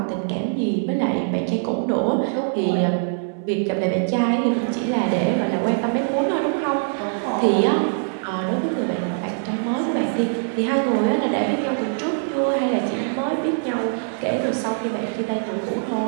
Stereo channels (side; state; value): left; silent; digital silence